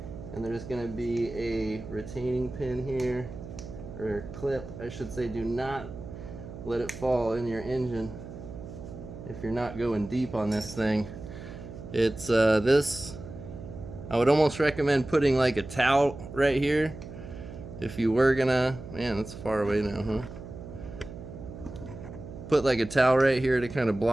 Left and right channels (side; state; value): right; noise; hum, 12 dB below the sound